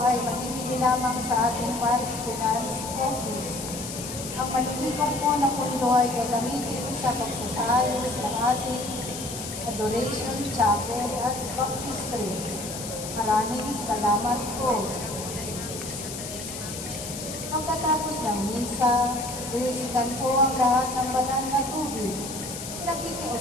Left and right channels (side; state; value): left; noise; hiss, 8 dB below the sound